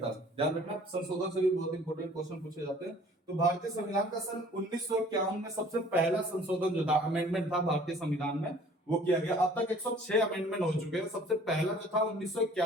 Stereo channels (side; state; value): both; normal; correlation 0.52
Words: ध्यान रखना, संशोधन से भी बहुत इंपॉर्टेंट क्वेश्चन पूछे जाते हैं। तो भारतीय संविधान का सन 1951 में सबसे पहला संशोधन जो था, अमेंडमेंट था भारतीय संविधान में, वो किया गया। अब तक 106 अमेंडमेंट हो चुके हैं, सबसे पहला जो था